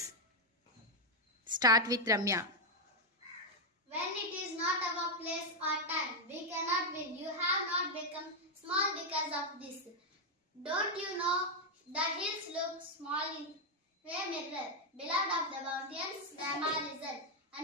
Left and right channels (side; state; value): both; normal; correlation 0.01